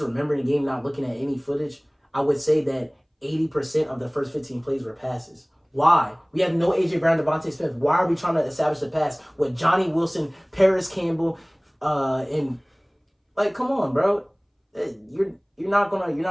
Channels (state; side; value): identical; both; correlation 1.00